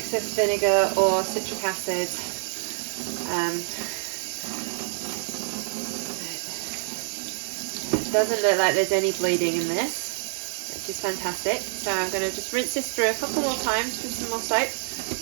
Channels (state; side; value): silent; left; digital silence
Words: vinegar or citric acid. It doesn't look like there's any bleeding in this, which is fantastic. So I'm going to just rinse this through a couple more times with some more soap